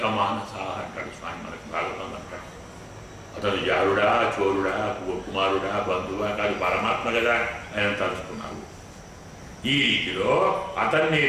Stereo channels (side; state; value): both; identical; correlation 1.00